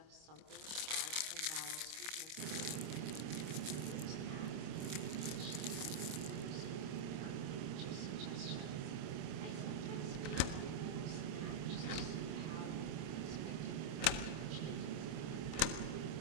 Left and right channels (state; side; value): late; left; 26 ms